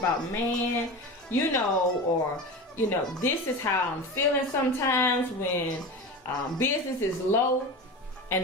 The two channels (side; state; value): both; normal; correlation 0.28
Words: man, you know, or, you know, this is how I'm feeling sometimes when business is low and